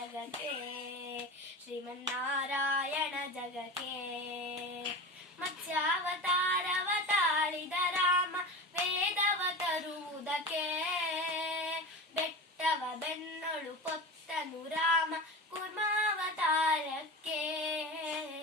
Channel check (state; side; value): normal; both; correlation 0.28